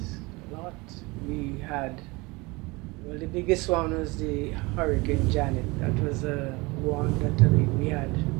a lot. We had, well, the biggest one was the Hurricane Janet. That was one that, I mean, we had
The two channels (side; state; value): left; quieter; 24.5 dB